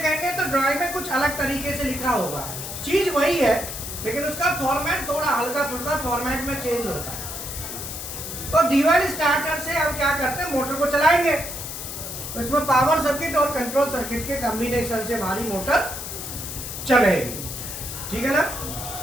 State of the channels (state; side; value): noise; left; hiss, 7 dB below the sound